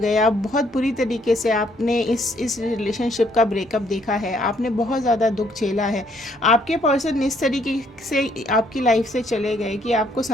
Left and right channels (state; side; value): normal; both; correlation 0.68